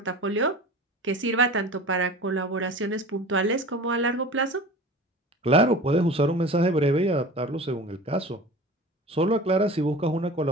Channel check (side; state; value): both; normal; correlation 0.37